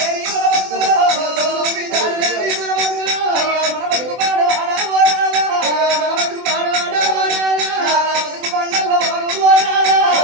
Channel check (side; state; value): left; late; 24 ms